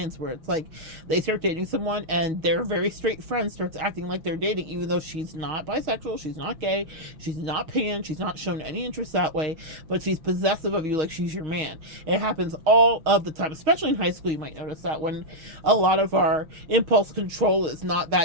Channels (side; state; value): left; late; 6.5 ms